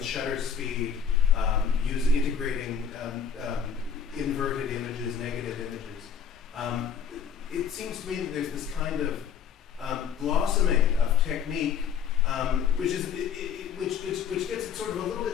shutter speed, integrating inverted images, negative images. It seems to me that there's this kind of blossoming of technique, which gets it sort of a little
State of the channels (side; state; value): right; quieter; 7.3 dB